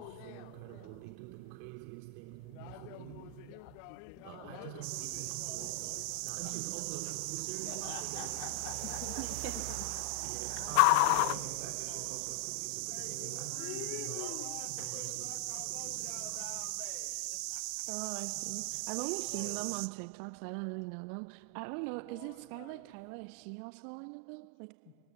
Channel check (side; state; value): both; different; correlation 0.00